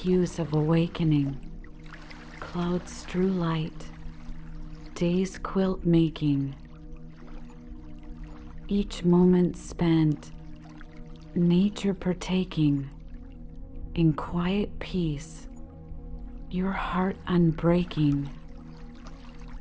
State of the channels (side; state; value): both; identical; correlation 1.00